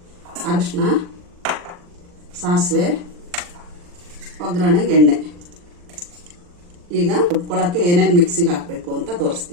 ಅರಿಶಿನ, ಸಾಸಿವೆ, ಒಗ್ಗರಣೆಗೆ ಎಣ್ಣೆ. ಈಗ ರುಬ್ಕೊಳ್ಳೋಕ್ಕೆ ಏನೇನು ಮಿಕ್ಸಿಗೆ ಹಾಕಬೇಕು ಅಂತ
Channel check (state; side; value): late; left; 40 ms